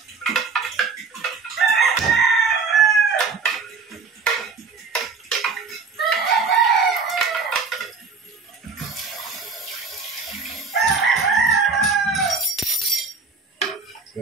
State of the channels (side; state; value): left; quieter; 4.8 dB